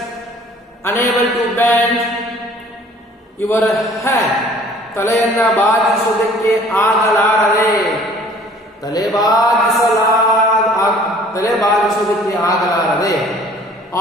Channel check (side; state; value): both; normal; correlation 0.53